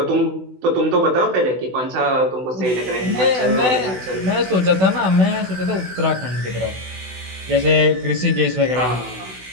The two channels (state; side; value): late; left; 16 ms